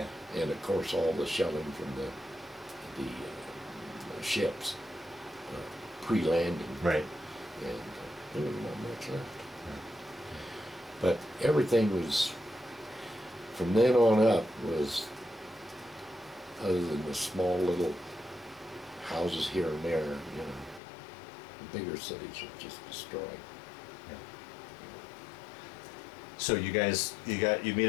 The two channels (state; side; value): drops out; right; at 20.8 s